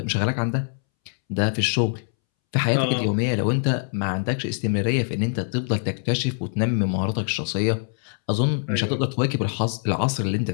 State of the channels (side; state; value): right; silent; 63 dB below the other